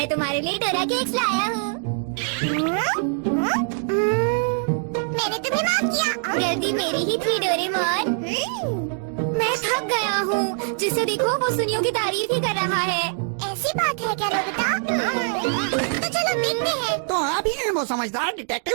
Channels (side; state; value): left; silent; digital silence